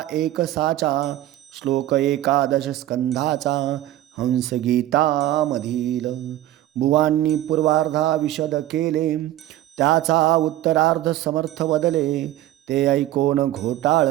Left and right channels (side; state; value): left; quieter; 14.2 dB